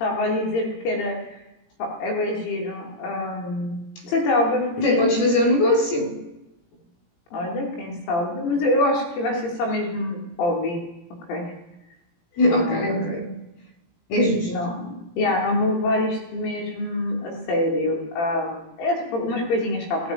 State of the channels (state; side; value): late; right; 17 ms